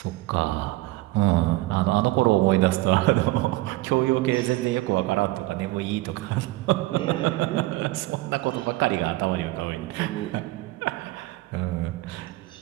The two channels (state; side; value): quieter; left; 19.1 dB